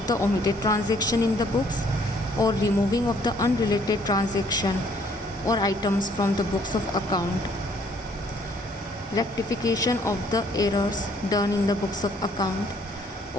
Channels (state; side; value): normal; both; correlation 0.63